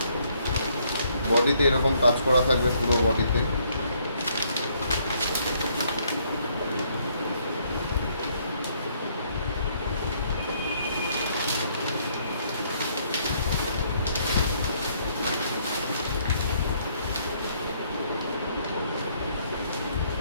বডিতে এরকম কাজ করা থাকবে পুরো বডিতে।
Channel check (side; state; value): both; inverted; correlation -0.69